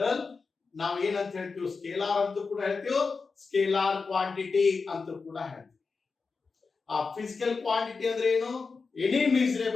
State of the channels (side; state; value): right; quieter; 4.6 dB